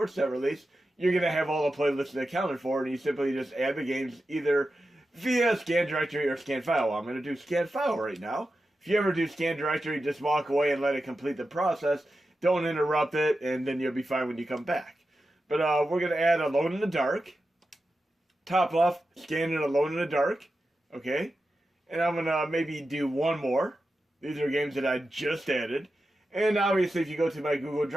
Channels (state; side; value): normal; both; correlation 0.91